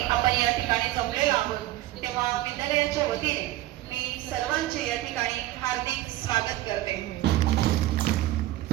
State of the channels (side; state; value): left; quieter; 15.8 dB